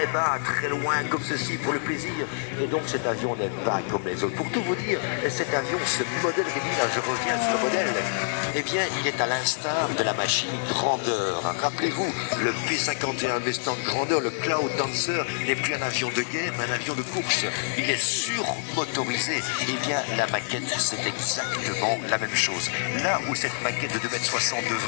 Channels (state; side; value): silent; right; digital silence